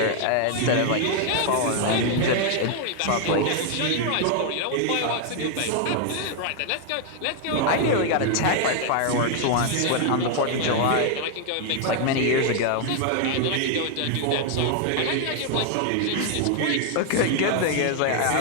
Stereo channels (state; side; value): different; both; correlation 0.00